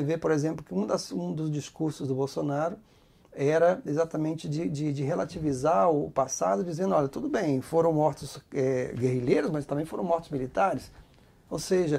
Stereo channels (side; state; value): both; identical; correlation 1.00